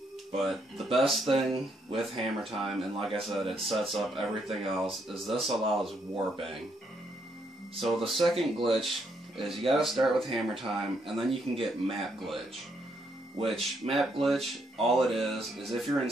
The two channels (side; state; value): both; normal; correlation 0.75